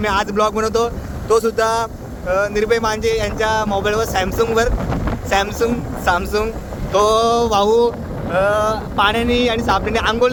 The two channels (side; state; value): both; identical; correlation 1.00